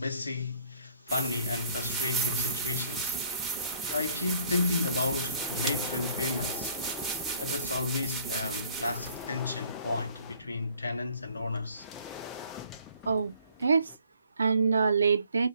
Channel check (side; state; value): both; inverted; correlation -0.59